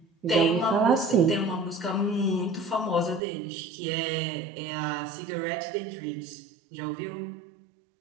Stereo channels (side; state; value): left; drops out; at 3.2 s